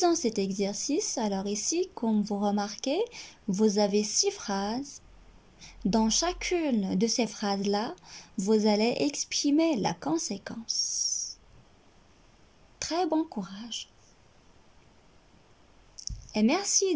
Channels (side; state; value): both; identical; correlation 1.00